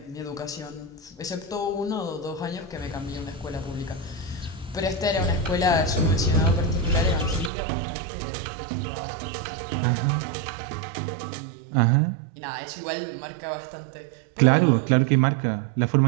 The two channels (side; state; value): left; drops out; at 7.5 s